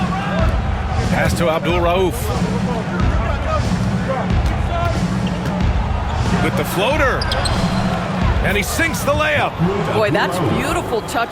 Pass to Abdul Rauf. With the floater. And he sinks the layup. Boy, that's beautiful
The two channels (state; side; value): identical; both; correlation 1.00